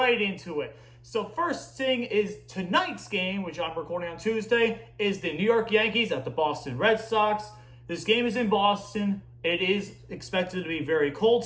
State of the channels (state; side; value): identical; both; correlation 1.00